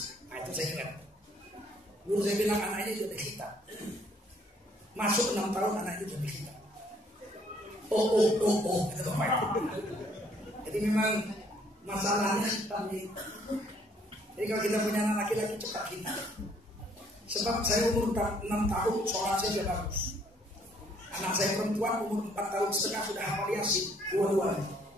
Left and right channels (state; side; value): normal; both; correlation 0.64